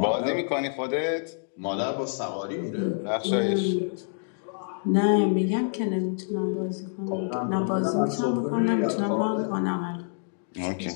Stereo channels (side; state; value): right; silent; digital silence